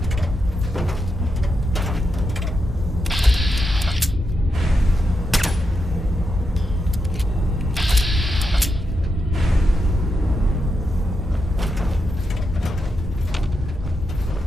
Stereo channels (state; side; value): normal; both; correlation 0.85